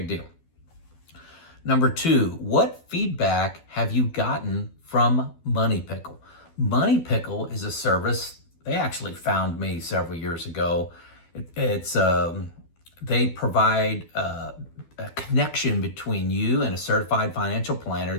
deal. Number 2, what feedback have you gotten from Money Pickle? Money Pickle is a service. They actually found me several years ago. They provide a connection between you and a certified financial planner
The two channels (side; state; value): right; late; 12 ms